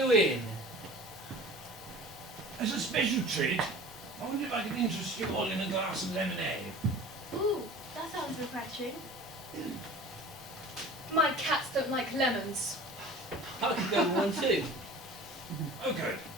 As a special treat, I wonder if I could interest you all in a glass of lemonade. Ooh, that sounds refreshing. lemons. I could go with one too. Oh, good.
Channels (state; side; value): normal; both; correlation 0.42